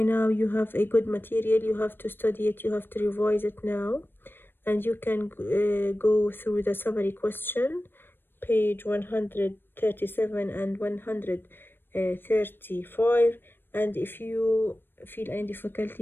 now you have a good material. You have to study it, you have to revise it now, and you can go through the summary question, page 137 and 135, and if you feel any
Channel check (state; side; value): late; right; 0.098 ms